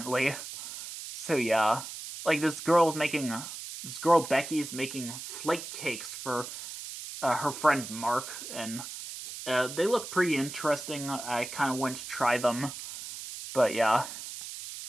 So yeah, like this girl Becky's making flake cakes for her friend Mark, and they look pretty interesting. I kind of went to try them, but yeah.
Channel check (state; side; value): noise; right; hiss, 10 dB below the sound